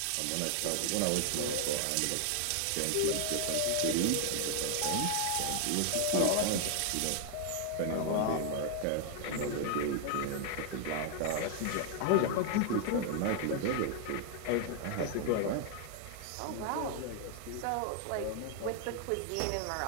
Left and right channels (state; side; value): different; both; correlation 0.00